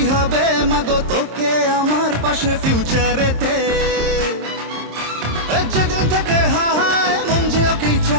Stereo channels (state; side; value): late; left; 26 ms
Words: হবে মাগো তোকে আমার পাশে ফিউচারেতে। যেদিন থেকে হায় মন যে ওকেই